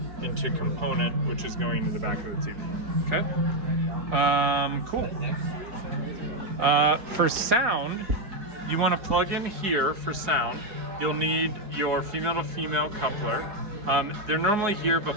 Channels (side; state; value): left; late; 4.8 ms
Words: into component, which is going into the back of the TV. Okay? Cool. For sound, you want to plug in here for sound. You'll need your female-to-female coupler. They're normally here,